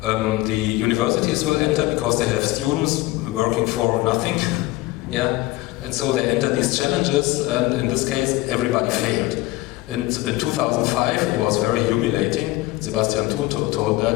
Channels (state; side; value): quieter; right; 19.1 dB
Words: universities will enter because they have students working for nothing. And so they enter these challenges, and in this case, everybody failed. In 2005, it was very humiliating. Sebastian Thun told